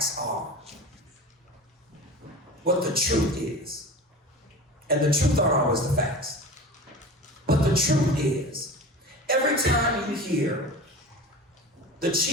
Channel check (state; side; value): normal; both; correlation 0.33